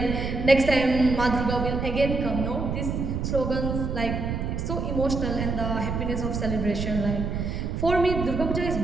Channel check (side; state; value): right; noise; rumble, 3 dB below the sound